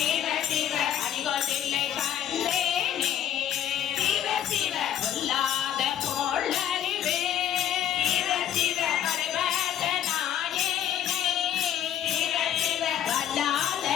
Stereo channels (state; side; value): quieter; right; 10.5 dB